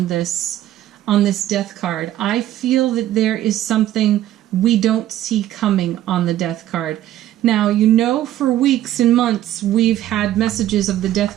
this death card. I feel that there is something we don't see coming on the death card. Now, you know, for weeks and months, we've had messages of the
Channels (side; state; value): left; quieter; 13.1 dB